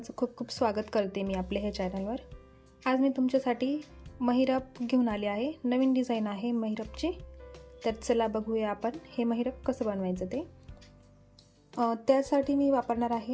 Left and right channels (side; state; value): both; identical; correlation 1.00